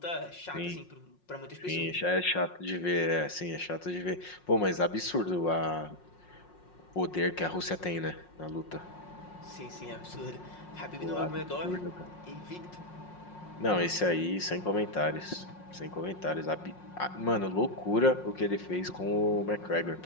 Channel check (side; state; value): right; late; 5.5 ms